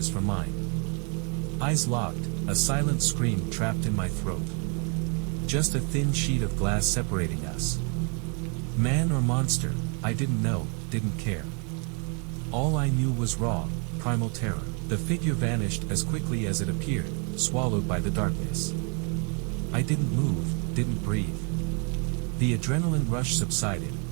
from mine. Eyes locked, a silent scream trapped in my throat. Just a thin sheet of glass separating us. Man or monster, I didn't know, didn't care. All I knew was raw, primal terror. The figure vanished as quickly as it appeared, swallowed by the darkness. I didn't move, didn't breathe. The adrenaline rush subsided,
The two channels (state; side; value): quieter; left; 36.8 dB